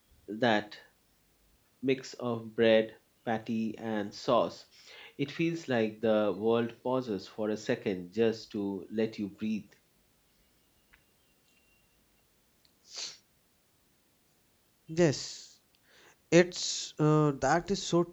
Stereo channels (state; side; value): identical; both; correlation 1.00